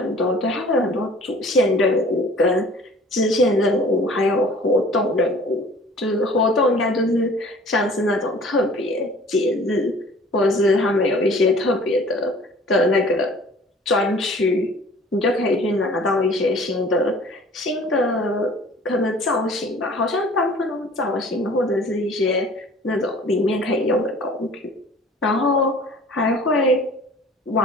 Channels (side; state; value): both; normal; correlation 0.49